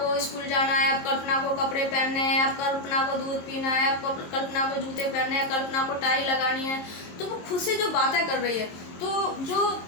स्कूल जाना है, आप कल्पना को कपड़े पहनने हैं, आप कल्पना को दूध पीना है, आप कल्पना को जूते पहनने हैं, कल्पना को टाई लगानी है, तो वो खुद से जो बातें कर रही है। तो जो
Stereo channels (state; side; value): late; right; 23 ms